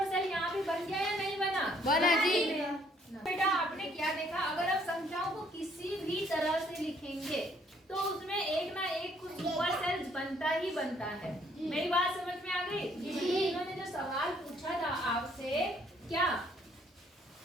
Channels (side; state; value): both; normal; correlation 0.65